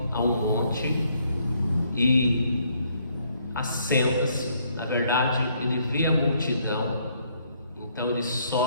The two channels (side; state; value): both; inverted; correlation -0.69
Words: a um monte e assenta-se. Na verdade, ele vê a multidão, então ele